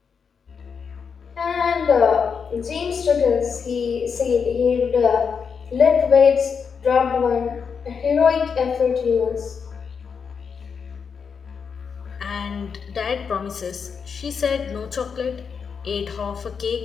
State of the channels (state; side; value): quieter; right; 6.2 dB